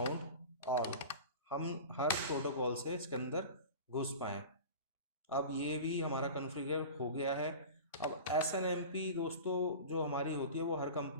ऑल, हम हर प्रोटोकॉल से इसके अंदर घुस पाएँ। अब ये भी हमारा कॉन्फ़िगर हो गया है। अब SNMP दोस्तों जो हमारी होती है वो हर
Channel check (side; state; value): both; inverted; correlation -0.34